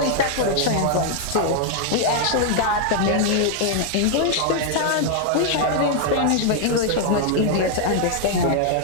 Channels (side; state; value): both; different; correlation 0.00